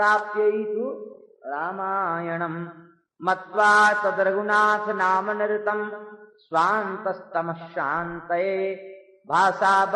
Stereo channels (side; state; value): both; identical; correlation 1.00